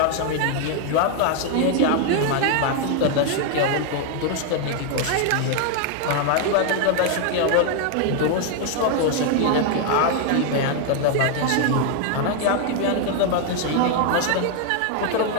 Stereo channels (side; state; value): both; different; correlation 0.00